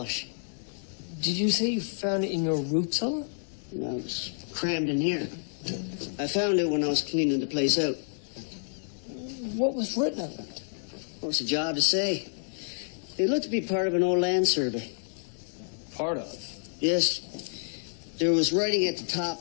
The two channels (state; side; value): silent; right; digital silence